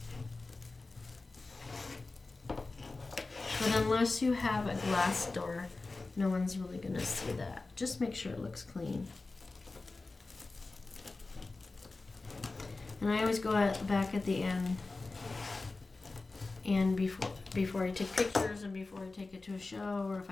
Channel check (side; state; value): right; quieter; 3.5 dB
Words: But unless you have a glass door, no one's really going to see that. Just make sure it looks clean. And I always go back at the end, and before I take pictures and before I take it to a show, or if